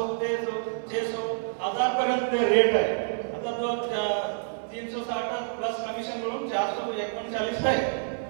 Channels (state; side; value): silent; left; 59 dB below the other